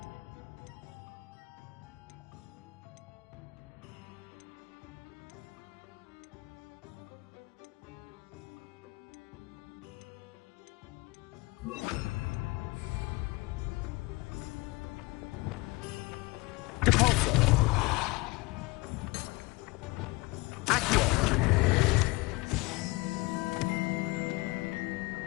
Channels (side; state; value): right; quieter; 23.7 dB